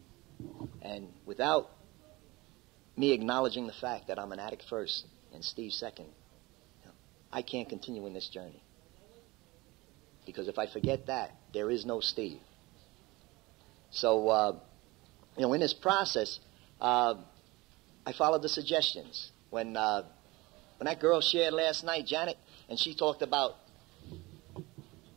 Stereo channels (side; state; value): left; quieter; 22.1 dB